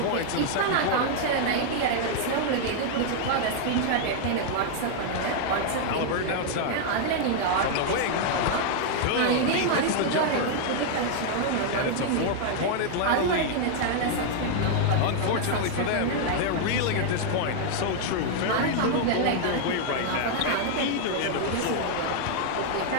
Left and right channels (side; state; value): both; different; correlation 0.00